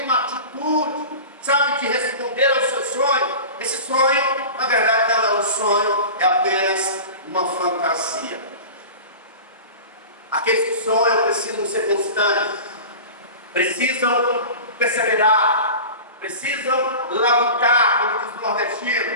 uma atitude, sabe, de responder ao seu sonho, esse sonho, na verdade, não é um sonho, é apenas uma fantasia. Aqueles que sonham precisam ser constantes, precisam perseverar, precisam labutar, como diz o nordestino,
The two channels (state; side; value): inverted; both; correlation -0.34